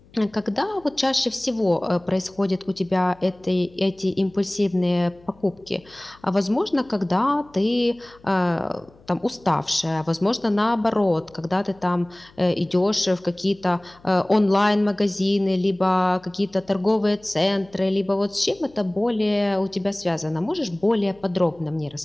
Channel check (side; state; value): left; noise; hum, 28 dB below the sound